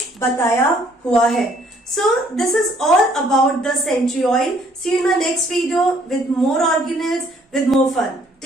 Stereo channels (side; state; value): both; normal; correlation 0.63